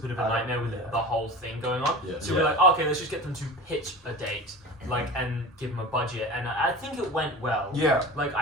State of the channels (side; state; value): both; normal; correlation 0.33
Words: of a I don't- nightmare with yeah. the whole thing going on. Yeah. So we're like, oh, okay, let's just get them to pitch a date, like, and give them a budget. And I think it went well. Yeah. Like